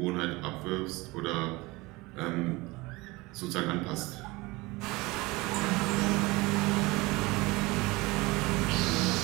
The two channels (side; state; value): left; quieter; 22.7 dB